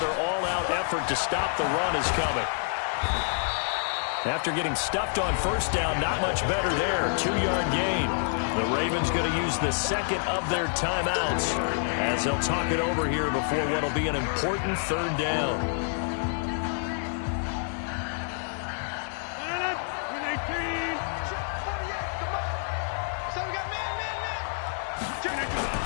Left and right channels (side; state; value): right; silent; 59 dB below the other